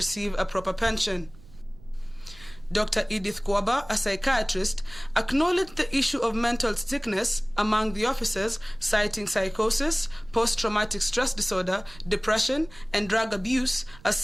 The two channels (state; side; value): noise; right; rumble, 22 dB below the sound